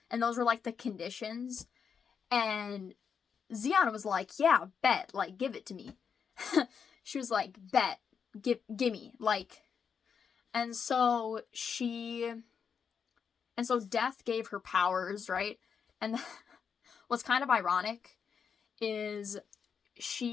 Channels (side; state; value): right; quieter; 6.7 dB